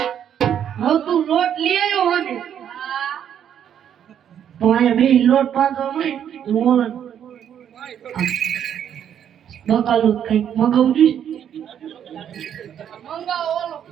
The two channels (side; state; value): left; quieter; 9.3 dB